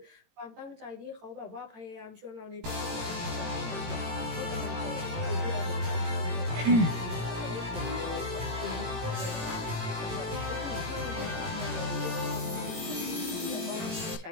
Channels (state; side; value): late; left; 18 ms